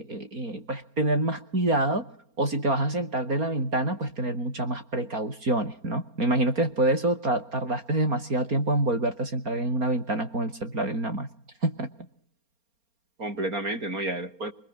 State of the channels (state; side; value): late; left; 4.3 ms